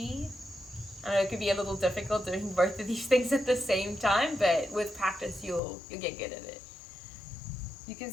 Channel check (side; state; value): right; drops out; at 5.6 s